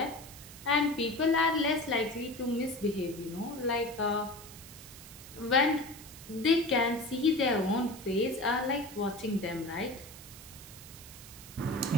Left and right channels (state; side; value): noise; right; hiss, 16 dB below the sound